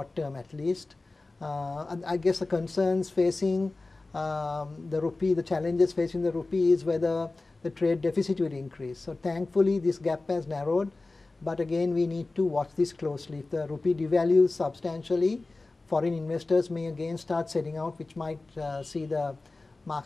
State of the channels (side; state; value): right; quieter; 3.3 dB